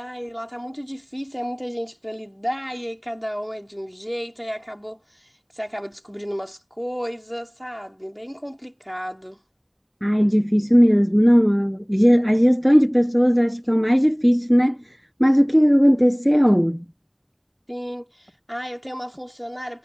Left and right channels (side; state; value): both; identical; correlation 1.00